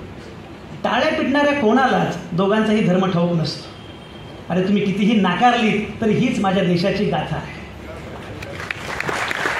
टाळ्या पिटणाऱ्या कोणालाच दोघांचाही धर्म ठाऊक नसतो. अरे तुम्ही कितीही नाकारली तरी हीच माझ्या देशाची गाथा आहे.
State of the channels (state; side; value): identical; both; correlation 1.00